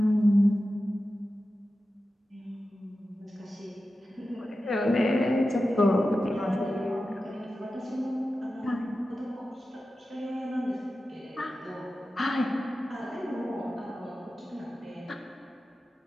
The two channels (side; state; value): both; normal; correlation 0.93